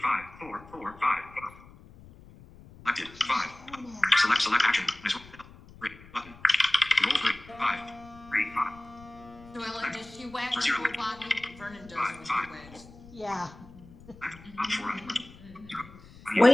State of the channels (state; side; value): noise; left; rumble, 21 dB below the sound